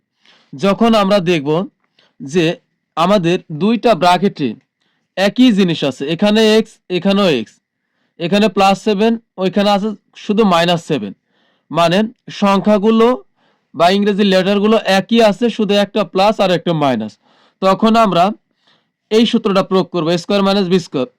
যখন আমরা দেখব যে আমাদের 2টা ব্র্যাকেটে একই জিনিস আছে, এখানে x এখানেও x, এখানে প্লাস 7 ওইখানে আছে শুধু মাইনাস 7, মানে সংখ্যাগুলো বা ইংরেজি লেটারগুলো একই আছে, শুধু একটা প্লাস আর একটা মাইনাস। তখন আমরা এই সূত্রটা প্রয়োগ করবো, স্কোয়ার মাইনাস বি স্কোয়ার,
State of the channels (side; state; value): both; identical; correlation 1.00